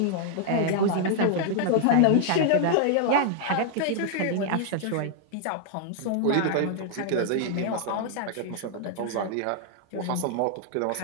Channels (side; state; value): both; different; correlation -0.01